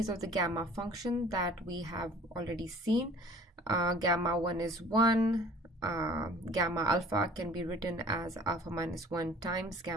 of the gamma function that we have already seen. Gamma 1 is 1. Gamma alpha can be written as alpha minus 1 times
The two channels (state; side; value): normal; both; correlation 0.49